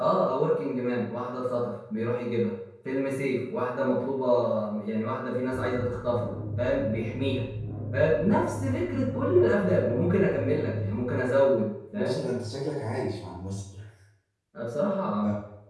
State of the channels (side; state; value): both; identical; correlation 1.00